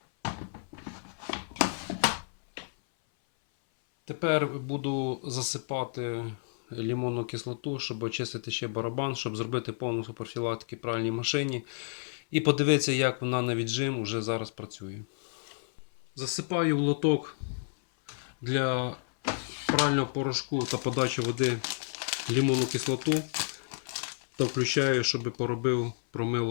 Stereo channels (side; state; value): right; silent; 57 dB below the other